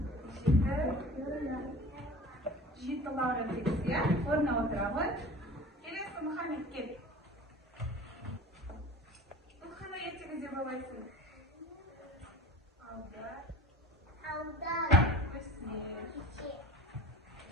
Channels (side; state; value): both; normal; correlation 0.40